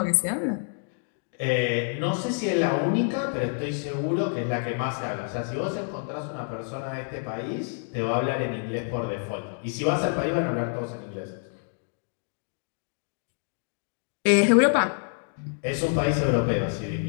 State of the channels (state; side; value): silent; right; 60 dB below the other